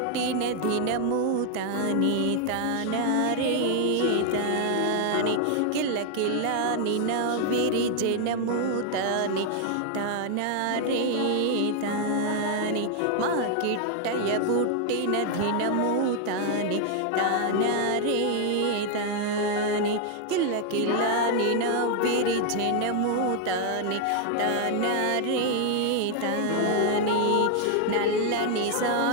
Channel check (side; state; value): both; different; correlation 0.00